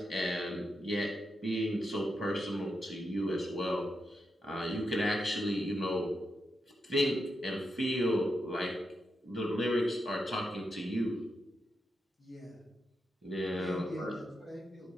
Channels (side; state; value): both; normal; correlation 0.85